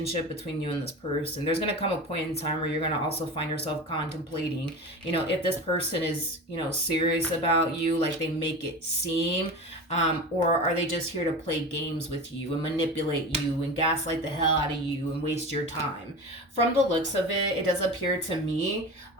between you and this person. There's going to come a point in time where you're going to also find yourself contemplating, if this person is, serious about you, like they make it seem, or are they just here to play games with you and manipulate you and gaslight the hell out of you and waste your time. From the looks of it, it does appear to me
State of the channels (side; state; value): both; normal; correlation 0.30